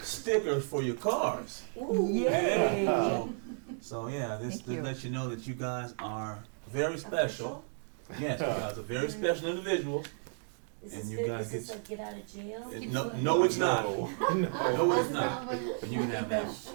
stickers for your cars. Yay! So yeah, this Thank you. lets you know that you guys are very special. Yes, you guys are very special individuals. Is And this you good? guys Is this get- a get out of jail? No, it's not. No. No, it's not. But you can have The that.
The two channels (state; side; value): silent; left; 56 dB below the other